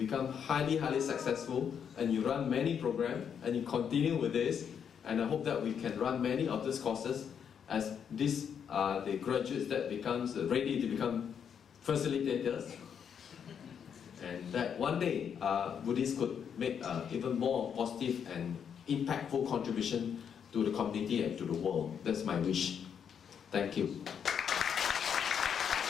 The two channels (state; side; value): quieter; right; 7.7 dB